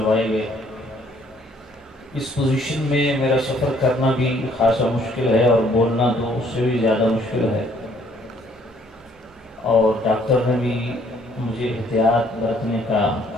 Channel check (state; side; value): normal; both; correlation 0.63